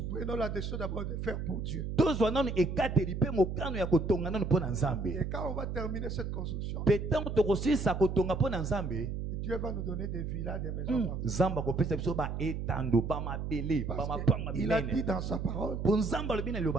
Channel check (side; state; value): right; noise; hum, 4 dB below the sound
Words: Prenons la décision d'abord de faire pour Dieu. Et quand on va terminer cette construction, Dieu va nous donner des villas, des maisons. Il a dit dans sa parole,